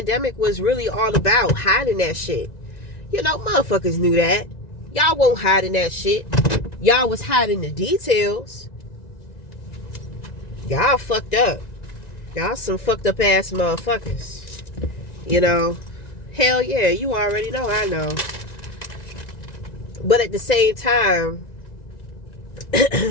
was really all about, hiding that shit. Motherfuckers knew that. Y'all won't hide in that shit. Y'all was hiding the details. Y'all fucked up. Y'all some fucked up ass motherfuckers. You know, hell yeah, you already know, I know. But at the same time,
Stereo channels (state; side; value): late; right; 1.9 ms